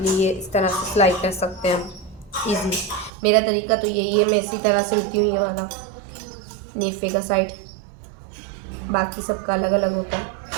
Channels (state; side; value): drops out; left; at 3.1 s